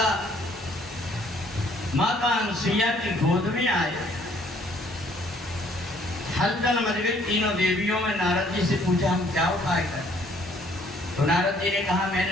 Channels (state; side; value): normal; both; correlation 0.62